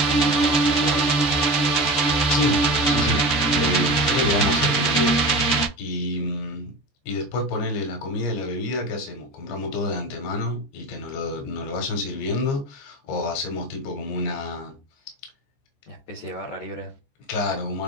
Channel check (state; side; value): late; right; 14 ms